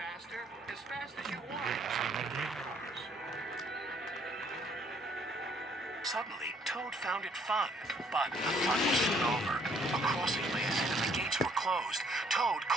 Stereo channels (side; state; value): both; normal; correlation 0.64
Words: as fast as you want. Suddenly, Toad found it fun, but the fun was soon over. A crossing lay ahead and the gates were closed. Toad